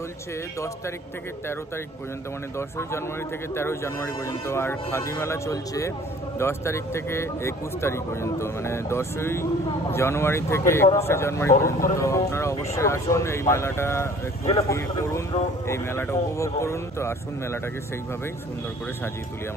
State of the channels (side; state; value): both; normal; correlation 0.51